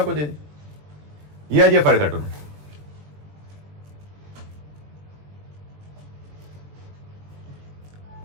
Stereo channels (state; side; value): late; left; 20 ms